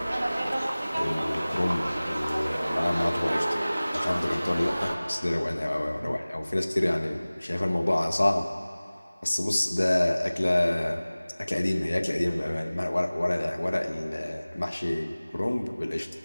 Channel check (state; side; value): inverted; both; correlation -0.99